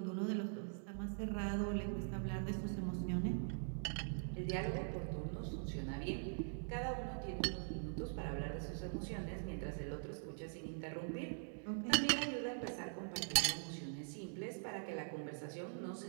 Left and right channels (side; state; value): left; silent; digital silence